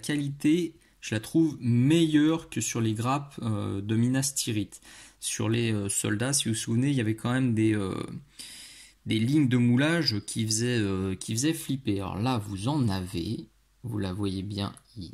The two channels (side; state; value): both; identical; correlation 1.00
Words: je la trouve meilleure que sur les grappes de Minas Tirith. Sur les soldats, si vous vous souvenez, il y avait quand même des lignes de moulage qui faisaient flipper. Alors là, vous en avez, vous la voyez bien